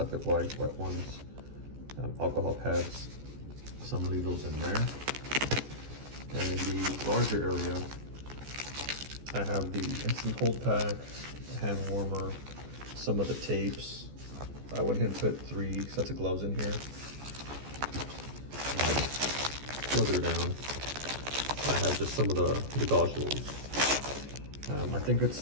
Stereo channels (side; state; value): left; late; 14 ms